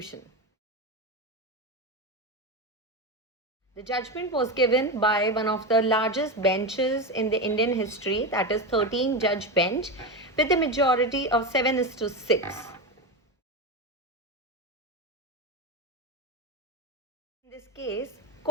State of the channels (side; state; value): both; normal; correlation 0.16